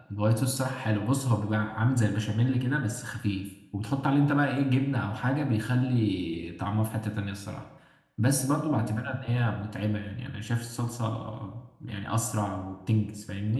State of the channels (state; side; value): identical; both; correlation 1.00